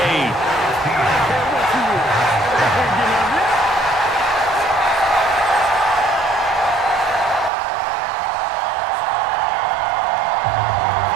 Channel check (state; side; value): drops out; left; at 7.5 s